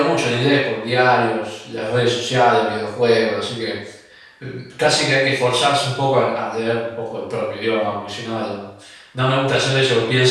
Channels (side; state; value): both; identical; correlation 1.00